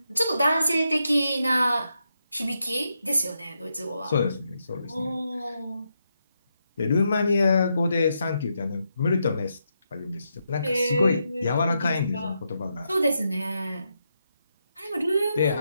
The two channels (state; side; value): inverted; both; correlation -0.83